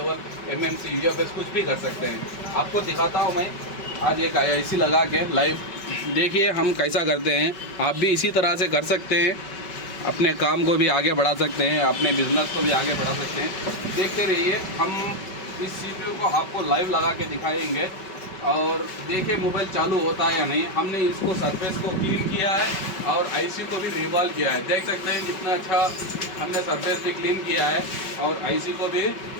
MMC, UFS कुछ भी कर सकते हैं। आपको दिखाता हूँ मैं आज एक आईसी लगा के लाइव। देखिए हम कैसा करते हैं, आप भी इसी तरह से कर सकते हैं। अपने काम को भी आगे बढ़ा सकते हैं, अपने बिजनेस को भी आगे बढ़ा सकते हैं। देखते रहिए, हम इस सीपीयू को आपको लाइव लगा के दिखाएंगे और देखिए मोबाइल चालू होता है या नहीं। हमने इसको सरफेस को क्लीन किया है और आईसी को भी रिवॉल्व किया है। देख सकते हैं कितना अच्छा हमने सरफेस भी क्लीन किया है और आईसी को भी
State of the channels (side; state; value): right; late; 5.3 ms